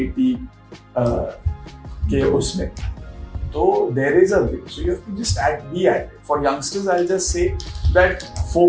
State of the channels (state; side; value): identical; both; correlation 1.00